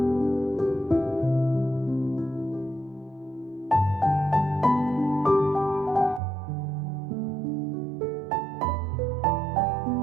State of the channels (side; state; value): left; drops out; at 6.2 s